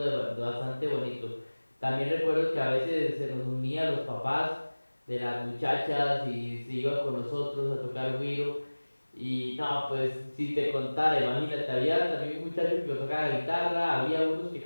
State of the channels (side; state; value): both; inverted; correlation -1.00